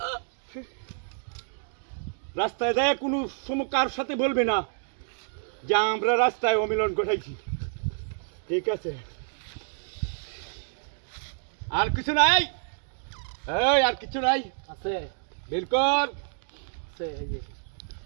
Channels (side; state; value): left; silent; digital silence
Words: রাস্তায় যায় কোনো কার সাথে বলবে না যে আমরা রাস্তায় অমিলন ঘটাইছি ঠিক আছে আর কিছু নাই এই আর কিছু নাই আছে বের কর আছে এই যে